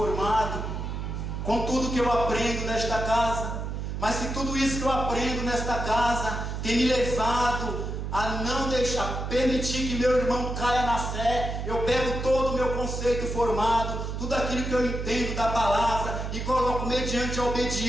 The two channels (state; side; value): noise; right; hum, 4 dB below the sound